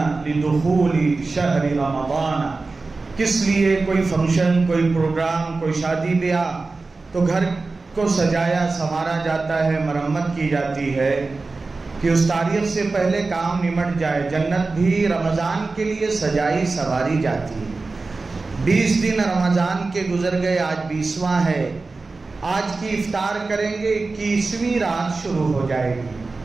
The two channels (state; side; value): quieter; left; 3.7 dB